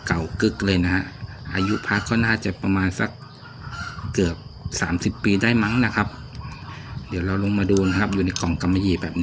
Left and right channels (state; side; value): identical; both; correlation 1.00